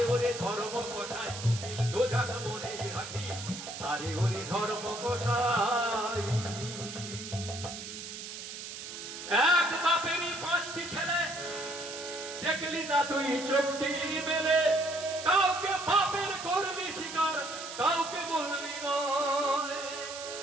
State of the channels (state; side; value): noise; right; hiss, 9 dB below the sound